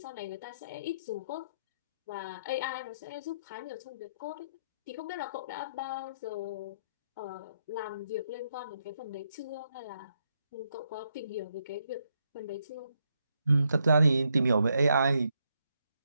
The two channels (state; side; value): inverted; both; correlation -0.78